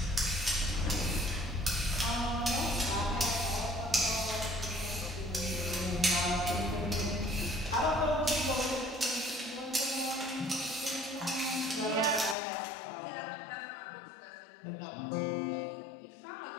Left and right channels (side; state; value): right; drops out; at 12.4 s